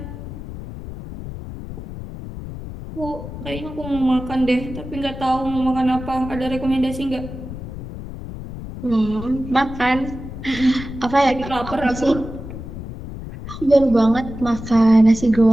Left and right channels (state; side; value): noise; left; rumble, 10 dB below the sound